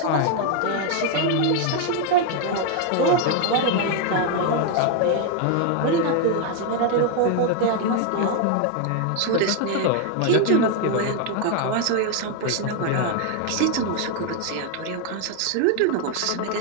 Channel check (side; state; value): both; different; correlation 0.01